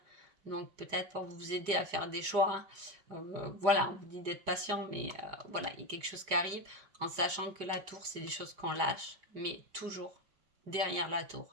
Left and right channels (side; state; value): left; late; 5.0 ms